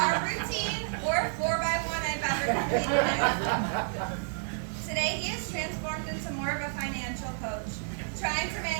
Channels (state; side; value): silent; left; digital silence